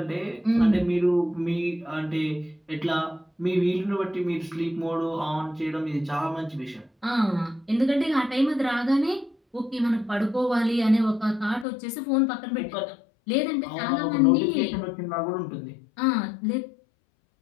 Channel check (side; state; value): right; drops out; at 11.7 s